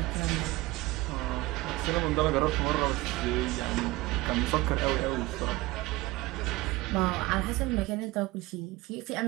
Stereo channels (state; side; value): quieter; left; 20.2 dB